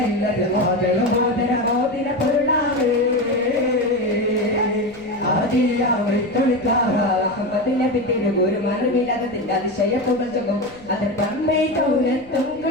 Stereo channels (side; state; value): left; noise; rumble, 25 dB below the sound